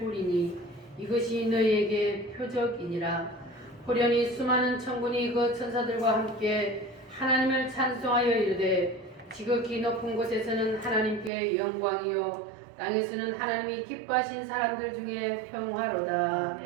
이것이 너희에게 표적이니라. 호련히 수많은 천군이 그 천사들과 함께 하나님을 찬송하여 이르되 지극히 높은 곳에서는 하나님께 영광이요 땅에서는 하나님이 기뻐하신 사람들 중에 평화로다.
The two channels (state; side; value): drops out; left; at 11.3 s